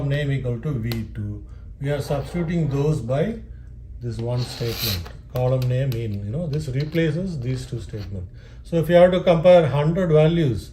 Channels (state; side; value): identical; both; correlation 1.00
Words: name equal to V2. We are substituting those by this one statement, column name in, you know, this replaces these 2 statements. So if you have to compare 100 values,